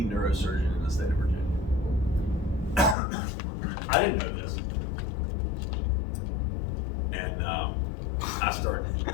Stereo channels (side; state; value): right; drops out; at 3.0 s